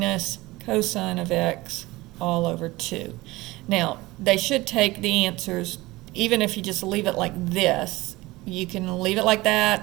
cosine of x all over 2. Now, they should take the answers, even if you just leave it like this. You can leave it like that,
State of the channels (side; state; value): left; quieter; 20.2 dB